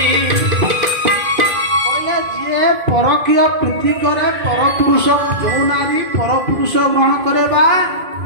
परकीय प्रीति करे परपुरुष जो नारी परपुरुष ग्रहण करे बा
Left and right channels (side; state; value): left; late; 2.5 ms